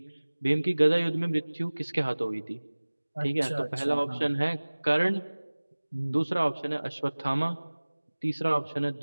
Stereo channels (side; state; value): both; inverted; correlation -1.00